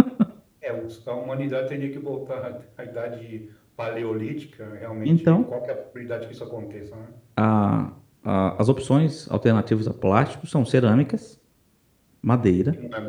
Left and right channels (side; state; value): both; identical; correlation 1.00